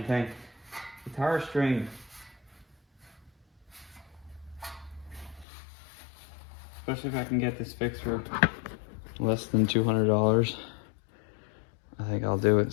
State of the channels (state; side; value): drops out; right; at 5.5 s